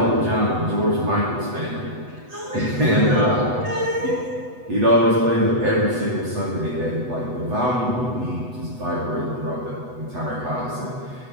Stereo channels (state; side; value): late; left; 8.1 ms